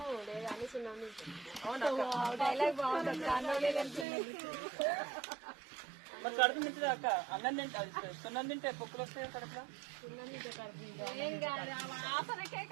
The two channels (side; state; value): left; drops out; at 4.0 s